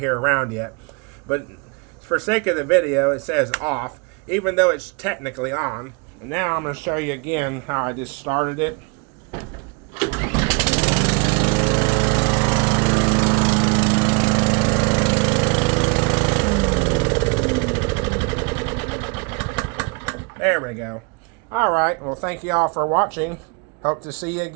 around yet. But for sake of the video, it says off, even though it's technically on. And now I'm going to show you again how I just started it. There we go. Alright, well thank you all for watching. Hope to see you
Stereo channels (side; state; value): left; quieter; 31.6 dB